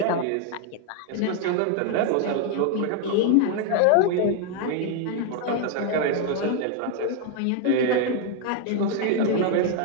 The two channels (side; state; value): both; different; correlation 0.01